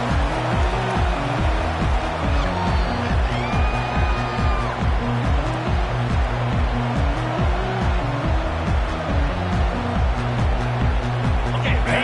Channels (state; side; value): identical; both; correlation 1.00